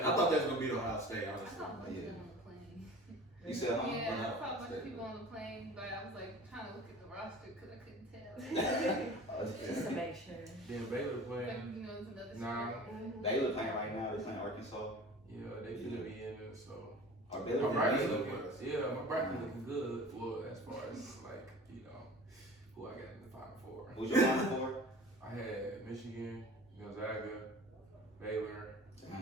thought that was gonna be Ohio State. I Honestly. saw a bunch of people on the plane. You said, huh? Yeah, I saw a bunch of people on the plane, but I was trying to look at the roster because I couldn't tell. Just to make sure. Then Baylor Like, playing. it's another Nah. story. Baylor playing right now. They're playing Arkansas. Yeah, they finna be in it, so. Or My Baylor. bracket Baylor looking, was. yeah, my bracket looking good. Well, as far as who I got in the Final Four. Who's your Final Four? I had Michigan, Gonzaga, Baylor.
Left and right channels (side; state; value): both; normal; correlation 0.41